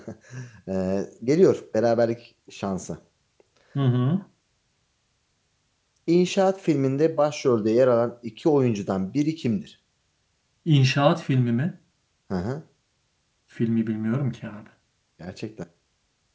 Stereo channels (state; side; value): identical; both; correlation 1.00